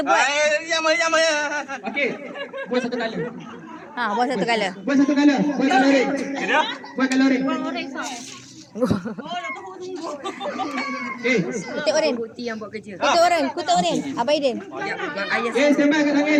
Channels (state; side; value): identical; both; correlation 1.00